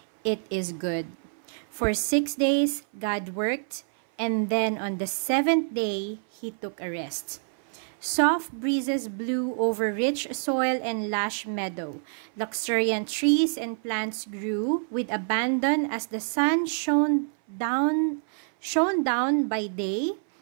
"It is good." For 6 days, God worked, and then on the 7th day, He took a rest. Soft breezes blew over rich soil and lush meadow. Luxuriant trees and plants grew with abandon as the sun shone down by day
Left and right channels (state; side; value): silent; left; 59 dB below the other